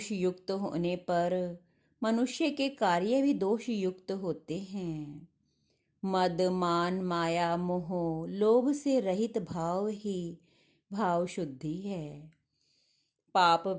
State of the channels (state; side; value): identical; both; correlation 1.00